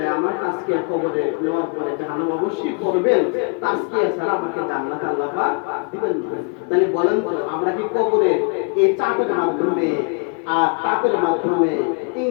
আমার তাজকিয়া কবরে নেওয়ার পরে জাহান্নাম অবশ্যই করবেন। তাজকিয়া ছাড়া আমাকে জান্নাত আল্লাহ পাক দিবেন না। তাহলে বলেন তো আমরা কি কবরে এই চাপের মাধ্যমে আর তাপের মাধ্যমে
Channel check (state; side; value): quieter; right; 34.8 dB